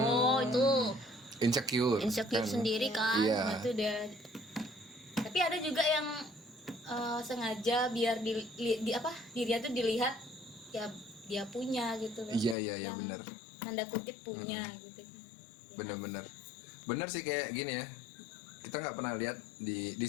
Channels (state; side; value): drops out; right; at 12.6 s